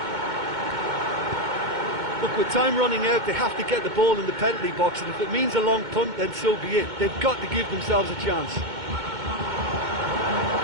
Look, with time running out, they have to get the ball in the penalty box, and if it means a long punt, then so be it. They've got to give themselves a chance.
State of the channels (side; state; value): left; late; 2.2 ms